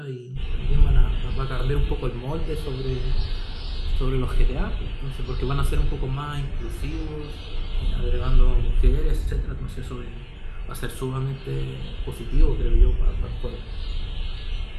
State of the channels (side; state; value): both; identical; correlation 1.00